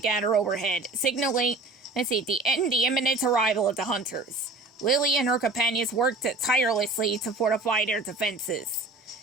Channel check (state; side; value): quieter; left; 3.2 dB